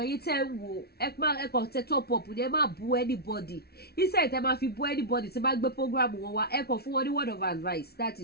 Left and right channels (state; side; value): late; right; 0.46 ms